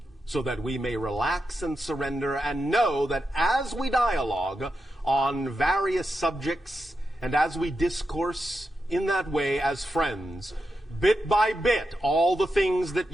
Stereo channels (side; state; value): both; normal; correlation 0.87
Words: so that we may relax and surrender and know that as we dialogue on various subjects and as we discourse in that way as friends, bit by bit, all the things that